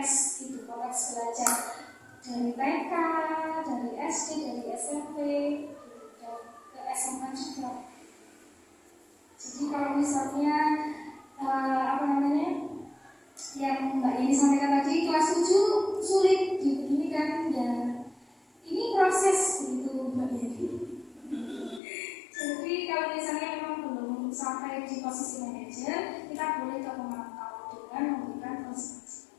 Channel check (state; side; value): drops out; right; at 21.8 s